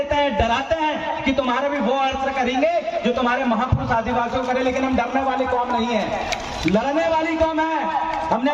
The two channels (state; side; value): identical; both; correlation 1.00